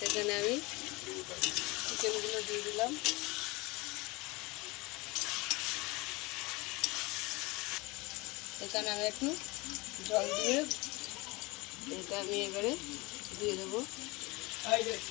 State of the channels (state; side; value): quieter; right; 24.1 dB